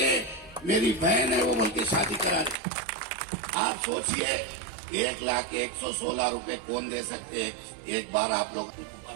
मेरी बहन है वो बोल के शादी करा दे। आप सोचिए 1,01,16 रुपए कौन दे सकते हैं? एक बार आप लोग,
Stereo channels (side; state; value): left; drops out; at 2.6 s